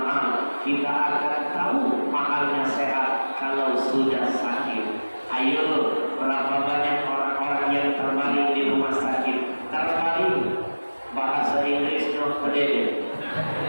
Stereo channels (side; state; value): both; inverted; correlation -1.00